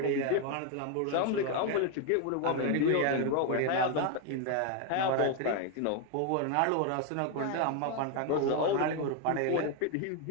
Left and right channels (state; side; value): different; both; correlation 0.01